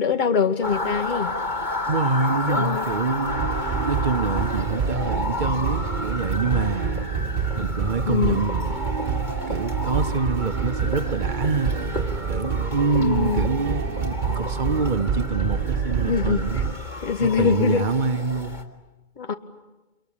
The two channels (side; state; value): left; late; 2.2 ms